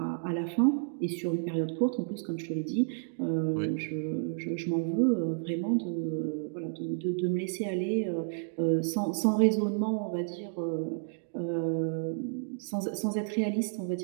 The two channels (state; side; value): silent; left; digital silence